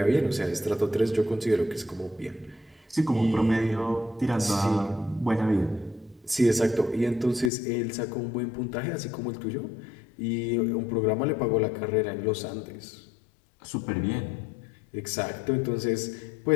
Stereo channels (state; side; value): drops out; right; at 7.5 s